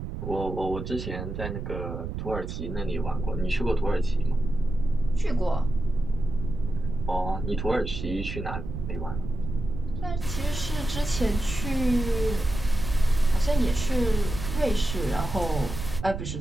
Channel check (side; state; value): right; noise; rumble, 6 dB below the sound